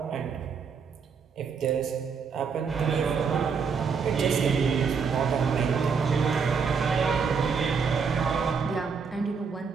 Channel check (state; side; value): quieter; left; 5.8 dB